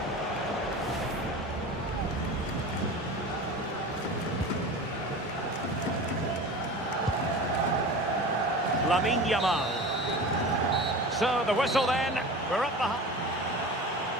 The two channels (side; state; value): both; normal; correlation 0.34